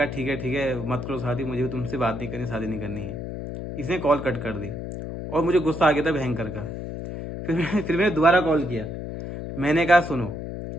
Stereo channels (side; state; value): left; noise; hum, 7 dB below the sound